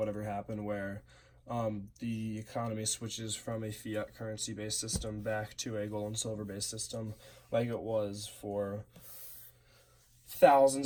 ever happen, where the economy switches from a fiat currency based system back to a gold and silver based system, like it was for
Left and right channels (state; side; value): identical; both; correlation 1.00